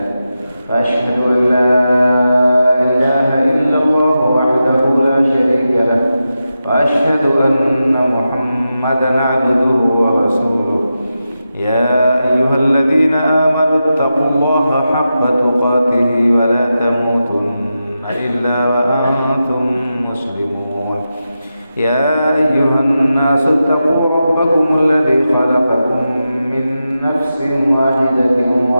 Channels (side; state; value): both; inverted; correlation -0.90